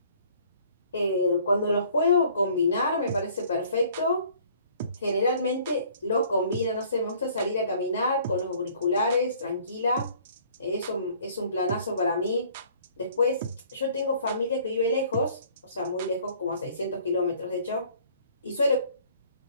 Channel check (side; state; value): both; inverted; correlation -0.56